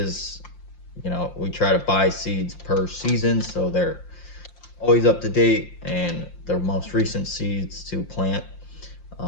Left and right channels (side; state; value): right; late; 5.7 ms